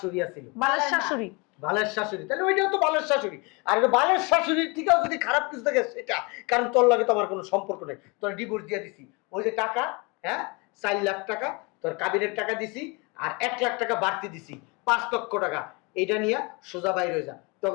আছিল। বালের শাশুড়ি। বালের শাশুড়ি, তাহলে ওইটাও তো বালের শাশুড়ি। আর এটা বালের শাশুড়ির থেকেও যদি খারাপ কিছু থাকে সেটা, কারণ তোর লাগে তো আমার কোনো সম্পর্ক নেই। তোর ডিভোর্স দিয়ে দিছি। ওই যে টাকা, হ্যাঁ 4 লাখ টাকা তোর কাবিনের টাকা দিছি, আর 1 লাখ টাকা বাড়তি দিছি, 5 লক্ষ টাকা। এইটা নিয়ে সোজা বাইরে হয়ে যা,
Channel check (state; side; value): quieter; right; 28.8 dB